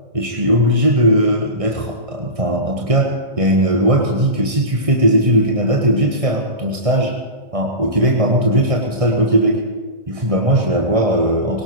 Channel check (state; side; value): late; left; 1.6 ms